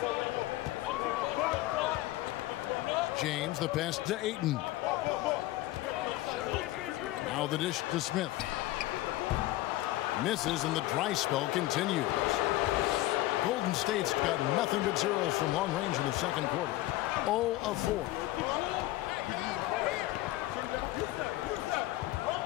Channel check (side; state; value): right; quieter; 16.9 dB